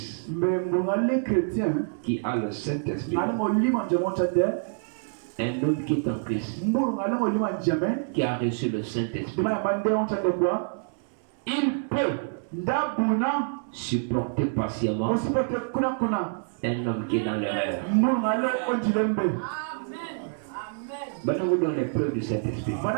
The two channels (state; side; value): silent; left; 60 dB below the other